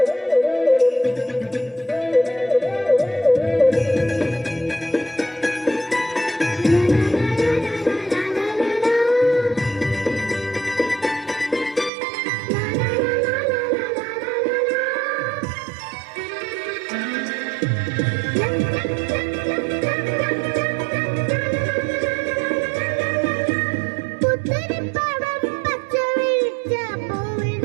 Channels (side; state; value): left; drops out; at 11.9 s